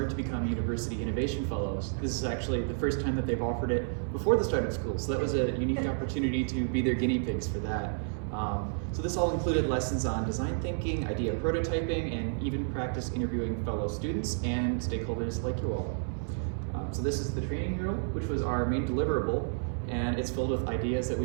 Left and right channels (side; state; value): left; silent; digital silence